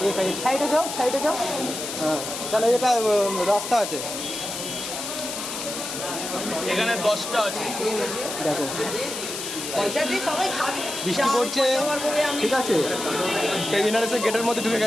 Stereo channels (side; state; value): left; noise; hiss, 6 dB below the sound